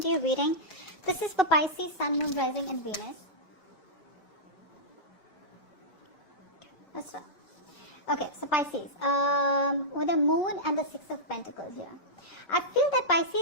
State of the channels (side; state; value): right; late; 5.2 ms